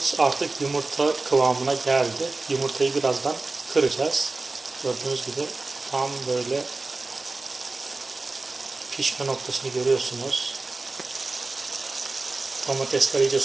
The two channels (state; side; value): quieter; left; 3.5 dB